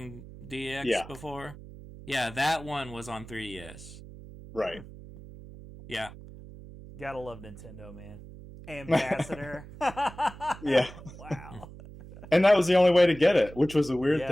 DX before. Yeah, that one was on 3DS. Right. Yeah. Gotta love Nintendo, man. Ambassador. Yeah. Wow. And that was the only way to get it, which was a weird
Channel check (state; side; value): noise; right; hum, 16 dB below the sound